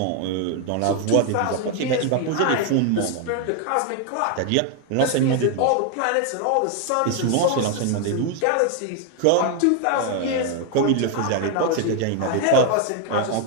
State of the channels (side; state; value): both; different; correlation 0.01